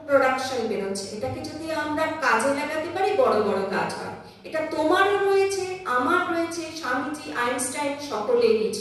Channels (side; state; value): both; identical; correlation 1.00